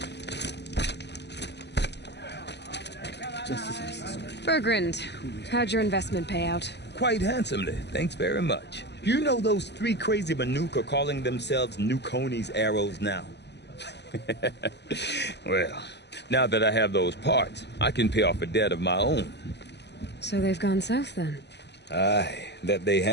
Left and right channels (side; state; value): right; late; 0.50 ms